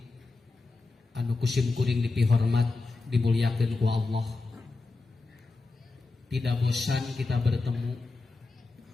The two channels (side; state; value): right; quieter; 3.7 dB